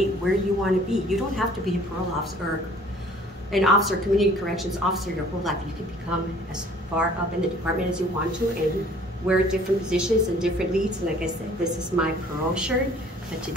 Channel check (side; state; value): both; normal; correlation 0.53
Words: where you want to be. You don't have to be a parole officer or an officer, community corrections officer your whole life. You can become as far up in the department as you want to and wear different positions and different leads. And like I said, this is my parole shirt, but